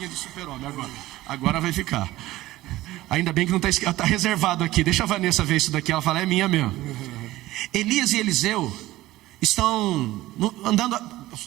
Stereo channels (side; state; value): left; quieter; 16.7 dB